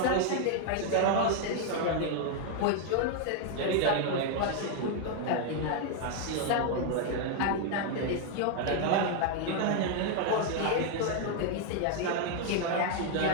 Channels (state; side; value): different; both; correlation 0.00